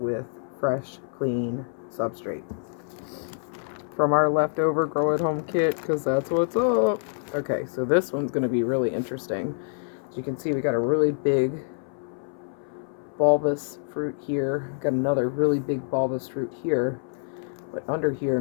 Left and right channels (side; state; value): right; silent; 61 dB below the other